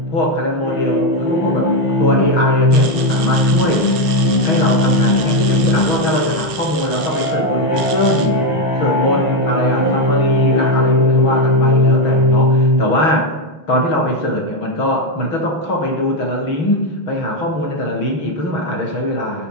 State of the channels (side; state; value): right; late; 5.5 ms